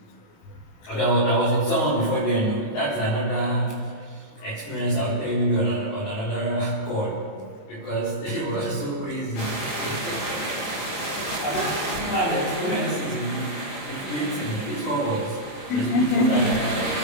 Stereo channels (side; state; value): right; late; 28 ms